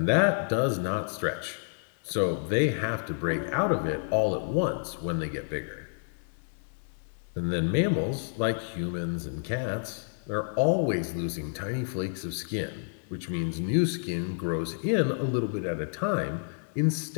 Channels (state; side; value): silent; right; 58 dB below the other